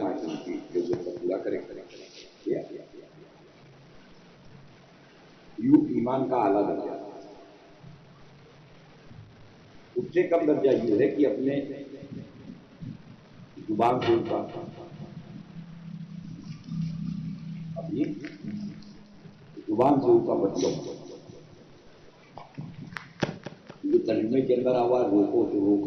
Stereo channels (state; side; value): identical; both; correlation 1.00